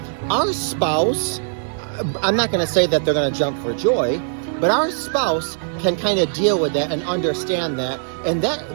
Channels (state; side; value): silent; left; digital silence